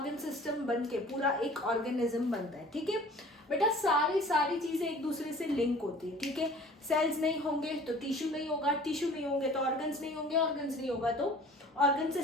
सिस्टम बन के पूरा एक ऑर्गेनिज्म बनता है. ठीक है बेटा, सारी चीजें एक दूसरे से लिंक होती है. ठीक है, सेल्स नहीं होंगे तो टिश्यू नहीं होगा, टिश्यू नहीं होंगे तो ऑर्गन्स नहीं होंगे, ऑर्गन्स नहीं होगा तो ऑर्गन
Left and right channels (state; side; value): normal; both; correlation 0.48